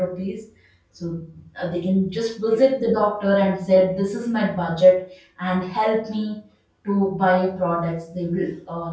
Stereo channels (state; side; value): identical; both; correlation 1.00